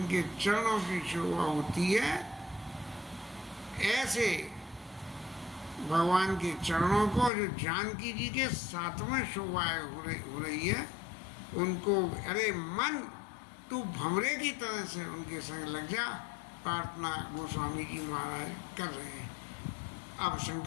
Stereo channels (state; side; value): drops out; right; at 7.3 s